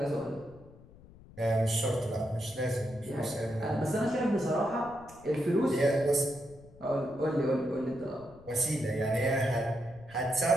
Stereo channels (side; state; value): left; noise; rumble, 22 dB below the sound